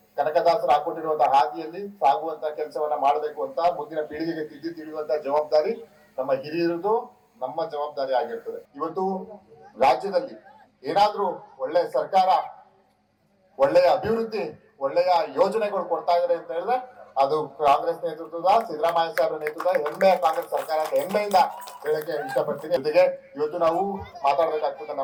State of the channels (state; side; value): identical; both; correlation 1.00